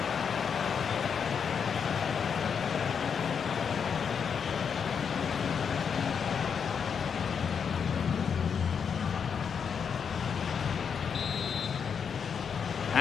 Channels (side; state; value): right; quieter; 6.8 dB